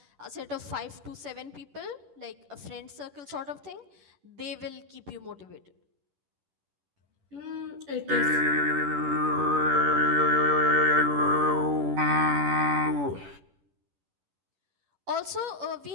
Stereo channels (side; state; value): left; late; 10 ms